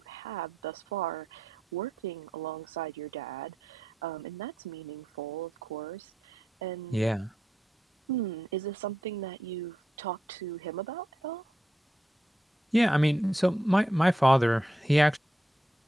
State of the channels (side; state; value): both; normal; correlation 0.83